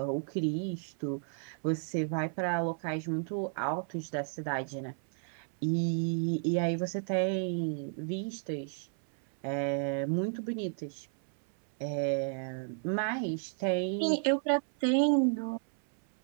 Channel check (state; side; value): silent; left; 56 dB below the other